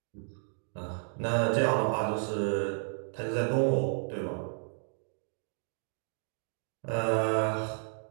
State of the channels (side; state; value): left; silent; digital silence